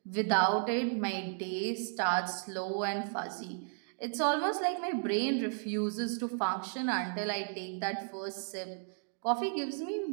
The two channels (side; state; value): left; silent; digital silence